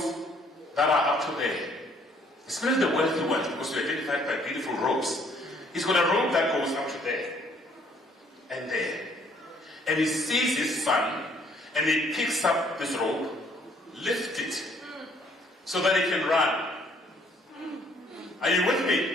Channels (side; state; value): both; normal; correlation 0.63